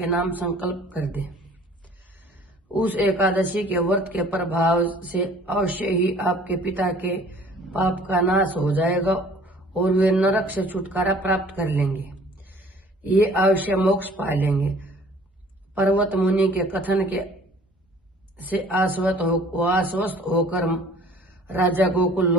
नाम संकल्प कर दें। उस एकादशी के व्रत के प्रभाव से अवश्य ही आपके पिता के पाप का नाश हो जाएगा और वे नरक से छुटकारा प्राप्त कर लेंगे। ये अवश्य मोक्ष पा लेंगे। पर्वत मुनि के कथन के से आश्वस्त होकर राजा गोकुल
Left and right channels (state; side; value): normal; both; correlation 0.52